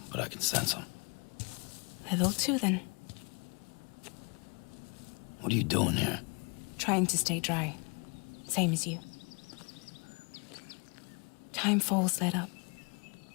but I can sense them. Level 2, then. What are you doing here? Trying to stay dry. Same as you. Time falls let up.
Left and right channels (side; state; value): right; quieter; 32.7 dB